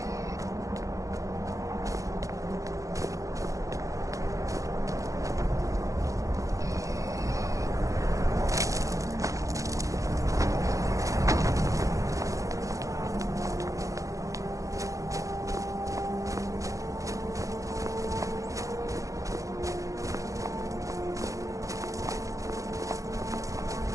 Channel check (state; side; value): late; left; 0.16 ms